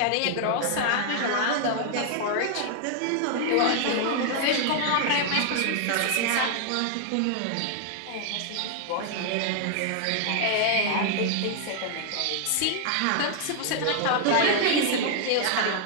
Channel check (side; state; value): both; different; correlation 0.00